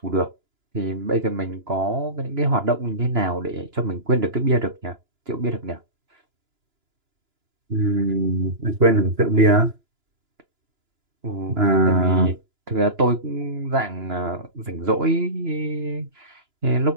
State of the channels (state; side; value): late; left; 2.9 ms